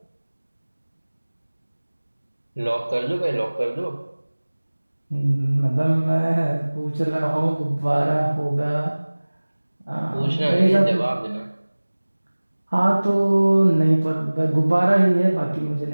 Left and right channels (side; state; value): both; inverted; correlation -1.00